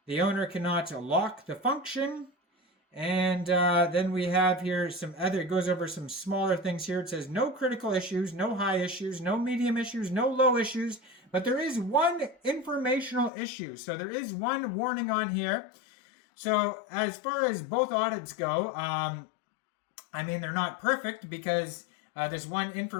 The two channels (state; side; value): drops out; right; at 13.3 s